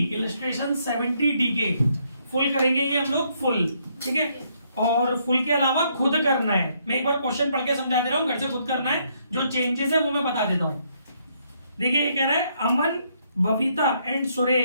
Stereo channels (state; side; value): inverted; both; correlation -0.72